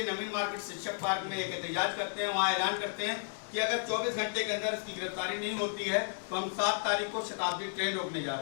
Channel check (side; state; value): right; silent; digital silence